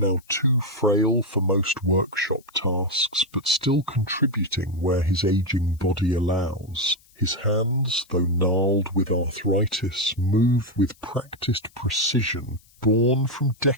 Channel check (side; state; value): left; noise; hiss, 30 dB below the sound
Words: too frail for most workshop tasks, but still contributing where his aging body allows. His hands, though gnarled with arthritis, move with practised precision, born from